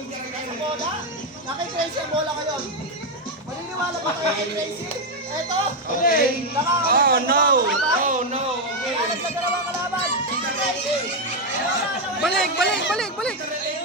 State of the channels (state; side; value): normal; both; correlation 0.04